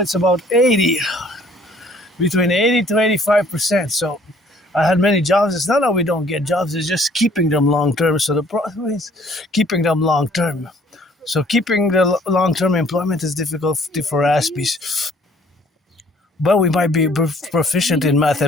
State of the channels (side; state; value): both; normal; correlation 0.58